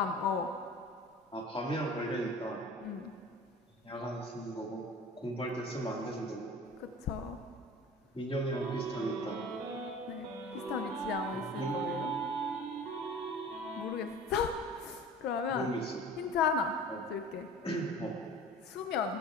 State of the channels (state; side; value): normal; both; correlation 0.41